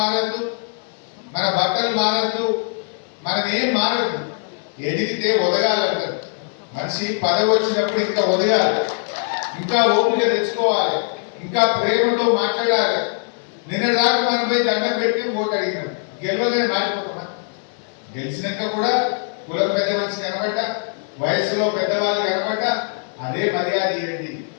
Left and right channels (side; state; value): right; silent; 57 dB below the other